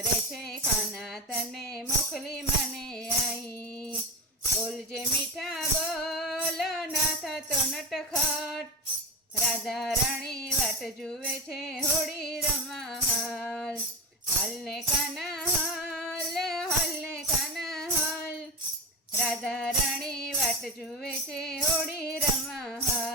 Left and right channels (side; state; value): both; normal; correlation 0.21